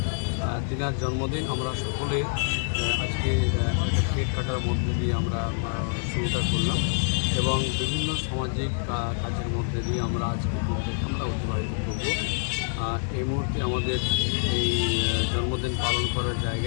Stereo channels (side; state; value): right; silent; digital silence